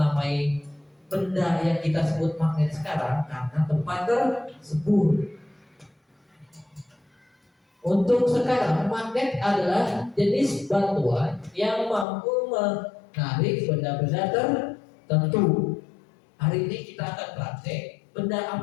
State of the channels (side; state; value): right; drops out; at 12.1 s